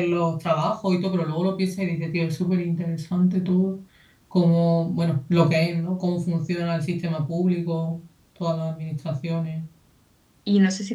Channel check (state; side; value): identical; both; correlation 1.00